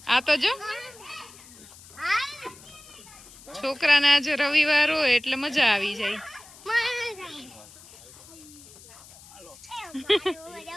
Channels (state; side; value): noise; left; hiss, 21 dB below the sound